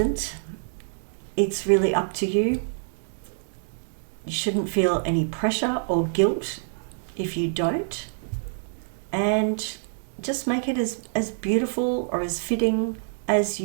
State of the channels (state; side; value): silent; left; digital silence